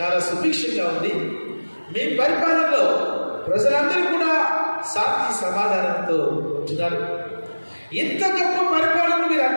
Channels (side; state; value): both; inverted; correlation -1.00